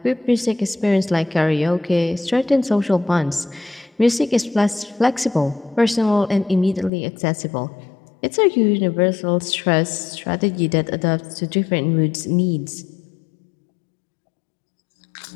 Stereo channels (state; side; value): drops out; right; at 6.9 s